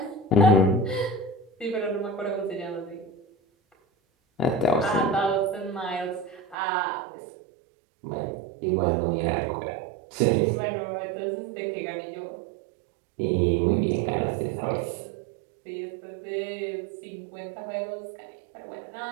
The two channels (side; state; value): left; drops out; at 6.6 s